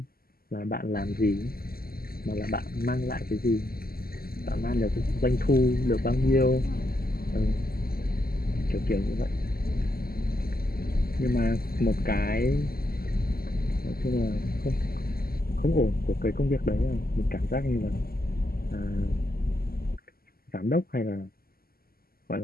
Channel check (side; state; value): right; late; 0.43 ms